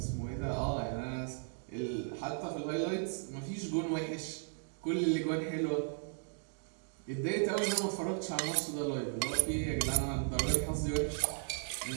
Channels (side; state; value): left; silent; 54 dB below the other